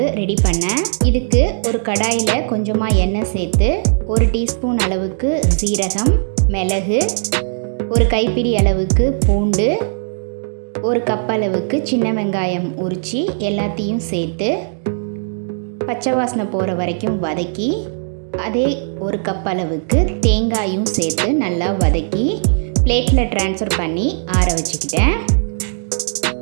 ரெடி பண்ணேன். இதுக்கு ஒரு கடாயில் கொஞ்சமாக எண்ணெய் சேர்த்து 1 டீஸ்பூன் அளவுக்கு ஜீரகம், மிளகு, ஒரு கைப்பிடி அளவுக்கு பூண்டு, 1 கப் அளவுக்கு சின்ன வெங்காயம் உரித்து எல்லாத்தையும் சேர்த்து பச்சை வாசனை போகிற வரைக்கும் வதக்கி, அதே 1 கப் அளவுக்கு தேங்காயும் சேர்த்து நல்லா வதக்கி பிளேட்டில் ட்ரான்ஸ்ஃபர் பண்ணி ஆற வச்சுக்கிட்டேன்.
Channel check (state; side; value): silent; left; digital silence